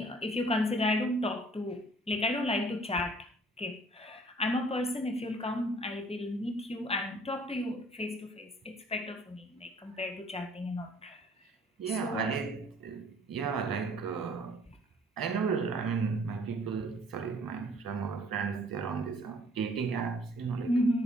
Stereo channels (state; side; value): normal; both; correlation 0.56